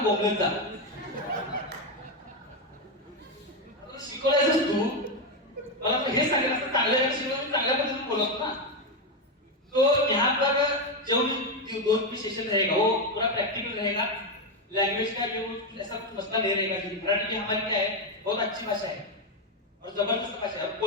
बोलने था, शिकवलायचंस तू, मला तो हे सांगितलं असतं चांगल्या शिकवलं चांगल्या पद्धतीने बोलत ना। तो यहाँ पर जो भी 2 सेशन रहेगा वो पूरा प्रैक्टिकल रहेगा, लैंग्वेज का जो ऐसा कुछ मसला नहीं रहेगा। मराठी की हमारी क्या है, बहुत अच्छी भाषा है और जबरदस्त भाषा है,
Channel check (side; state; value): both; normal; correlation 0.07